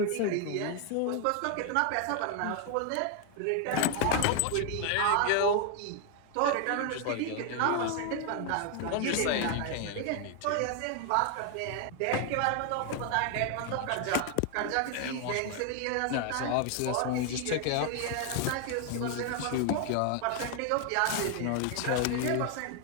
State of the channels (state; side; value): different; both; correlation 0.01